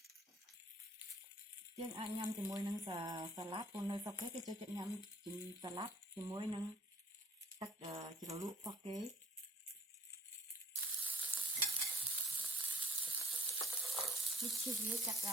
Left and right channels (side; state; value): both; normal; correlation 0.53